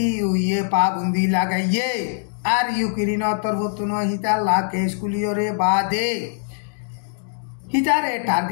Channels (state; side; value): silent; right; digital silence